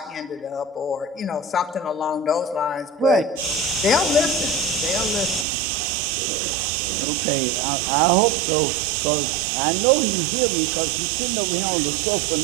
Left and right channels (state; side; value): drops out; left; at 5.5 s